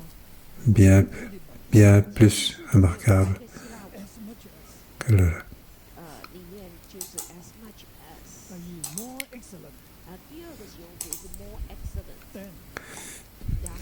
bien plus remarquable que le.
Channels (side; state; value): both; identical; correlation 1.00